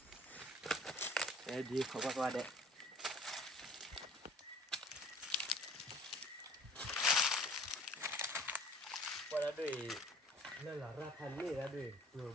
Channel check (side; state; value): both; normal; correlation 0.50